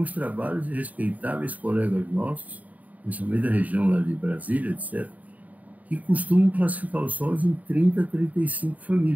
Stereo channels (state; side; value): late; left; 0.074 ms